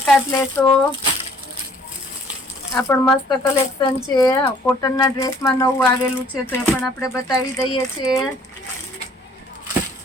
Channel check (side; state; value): both; normal; correlation 0.58